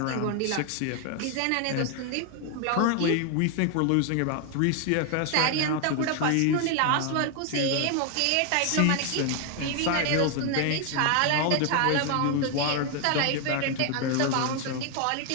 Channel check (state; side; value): different; both; correlation 0.00